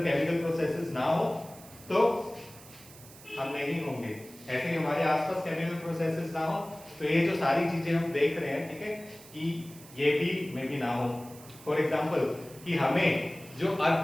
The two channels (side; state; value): right; noise; hiss, 20 dB below the sound